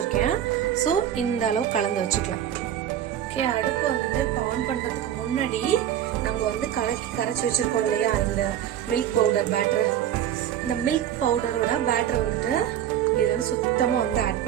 ஸோ இந்த அளவு கலந்து வச்சுக்கலாம். ஓகே, அடுப்பு வந்துட்டு இப்போ ஆன் பண்ணுறதுக்கு முன்னாடி நம்ம வந்து கரைச்சி வச்சுருக்கோம் இல்லையா இந்த மில்க் பவுடர் பேட்டர், இந்த மில்க் பவுடரோட பேட்டரை வந்துட்டு இதில் வந்து சுத்தமாக வந்து ஆட்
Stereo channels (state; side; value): quieter; left; 10.8 dB